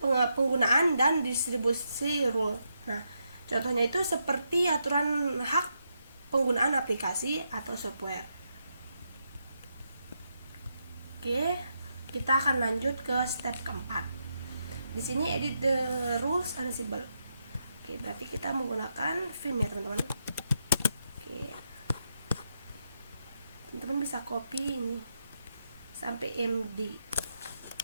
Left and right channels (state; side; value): inverted; both; correlation -0.82